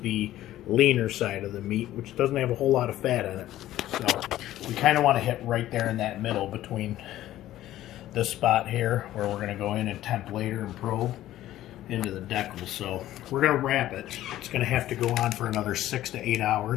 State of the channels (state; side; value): quieter; right; 14.0 dB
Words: the leaner side of the meat, which doesn't have a whole lot of fat in it. So we kind of want to hit right there in that middle between this spot here, where we're going to go in and temp later and probe into the decal. So we're going to wrap it. It's going to have to go on for another 6 to 8